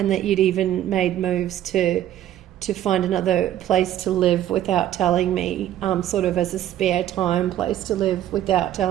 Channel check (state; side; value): quieter; left; 12.0 dB